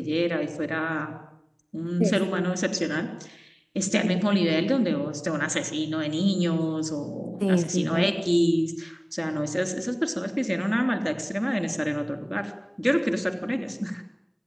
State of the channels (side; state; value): both; identical; correlation 1.00